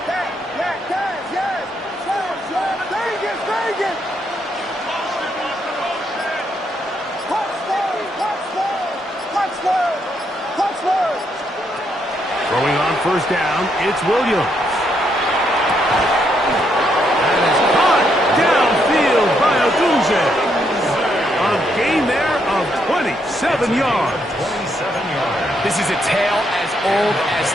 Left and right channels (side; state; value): both; normal; correlation 0.76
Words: Throwing on 1st down, it's Williams. That is caught downfield by Odunze. A gain there of 27 yards. 27 yards. This is a tale as old as